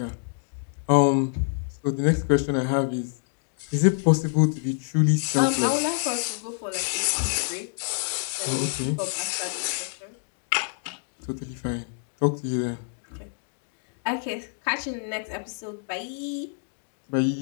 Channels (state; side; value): silent; right; digital silence